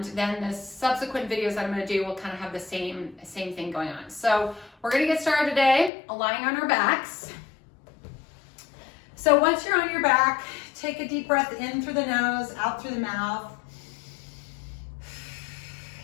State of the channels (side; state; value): right; drops out; at 5.9 s